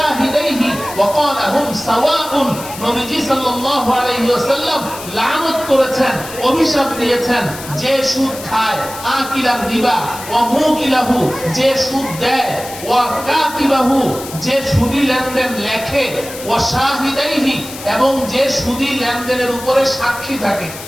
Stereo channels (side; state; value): left; noise; hiss, 13 dB below the sound